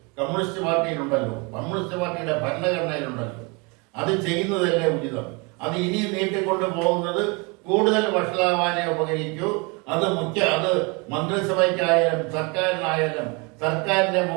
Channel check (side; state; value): left; quieter; 29.7 dB